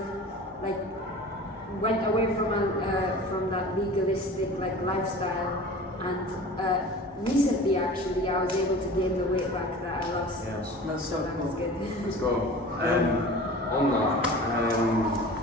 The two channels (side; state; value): both; normal; correlation 0.39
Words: went away from that legalistic lifestyle, and recently actually I was able to gain the weight back that I lost. Yes. That's so That was cool. good. Let's go. On that, I